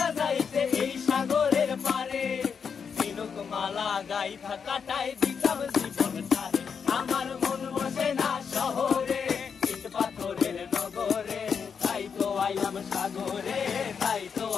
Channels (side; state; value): right; quieter; 6.4 dB